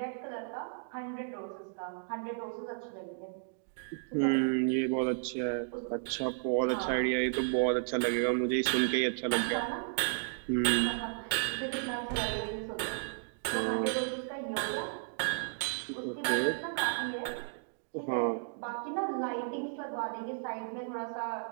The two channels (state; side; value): silent; left; digital silence